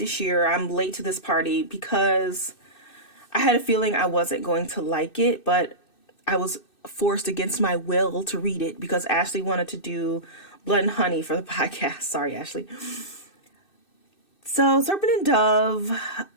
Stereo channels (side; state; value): right; late; 2.6 ms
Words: year. I'm late to this party because I had a feeling I wasn't going to like it, but I was forced against my will to read it because Ashley wanted to do Blood and Honey for the podcast. Sorry, Ashley. So Serpent and Dove,